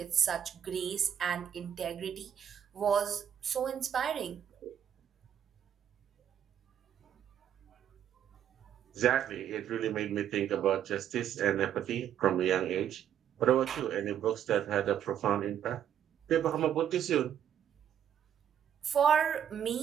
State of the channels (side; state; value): left; quieter; 9.5 dB